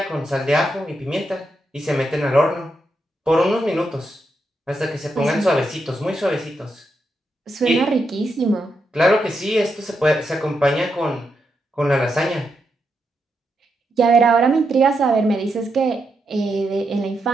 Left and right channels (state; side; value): normal; both; correlation 0.83